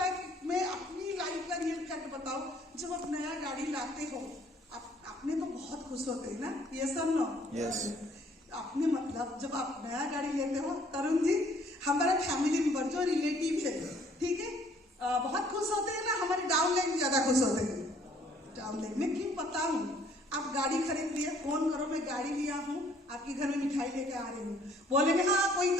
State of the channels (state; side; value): normal; both; correlation 0.61